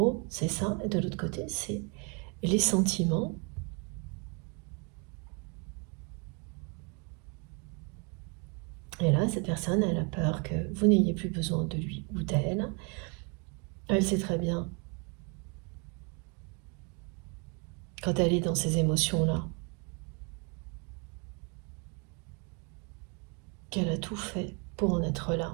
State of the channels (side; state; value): left; quieter; 34.3 dB